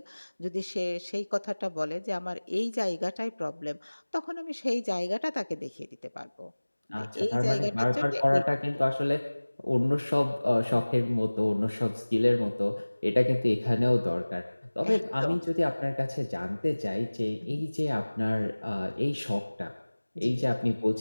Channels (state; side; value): inverted; both; correlation -1.00